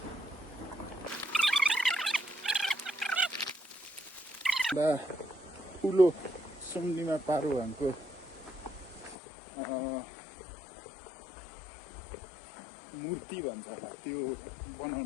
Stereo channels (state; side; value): drops out; right; at 9.2 s